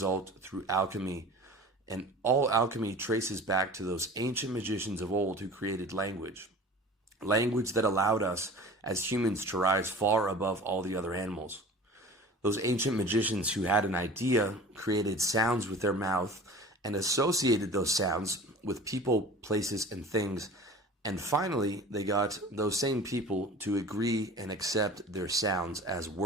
through alchemy. And all alchemy traces back to those ancient magicians of old who created language. Language that allowed us as humans to rise far above all the other animals. Those ancient magicians who had an idea created sounds with their mouth and associated those sounds with people, places, and things. And finally, they got those same people to agree and accept their sounds as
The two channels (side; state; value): both; normal; correlation 0.40